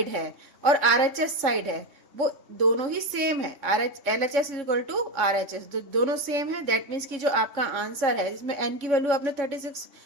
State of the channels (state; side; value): late; left; 3.6 ms